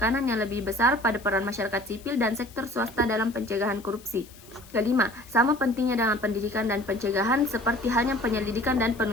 yang lebih besar pada peran masyarakat sipil dan sektor swasta dalam pencegahan korupsi. Kelima, sama pentingnya dengan pendidikan dan pencegahan seperti halnya penyelidikan dan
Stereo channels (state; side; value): noise; left; hiss, 22 dB below the sound